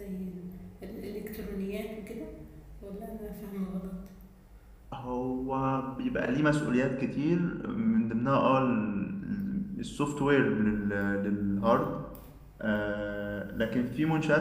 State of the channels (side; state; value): both; identical; correlation 1.00